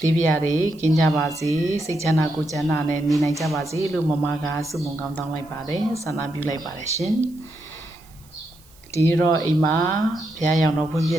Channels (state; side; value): noise; right; hiss, 27 dB below the sound